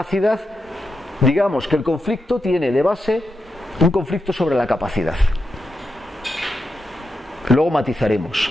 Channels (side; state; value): both; normal; correlation 0.87